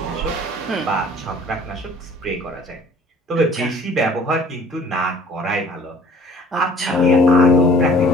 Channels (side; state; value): both; normal; correlation 0.52